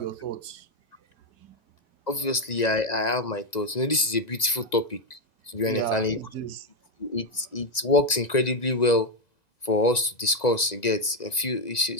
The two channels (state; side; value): late; right; 1.9 ms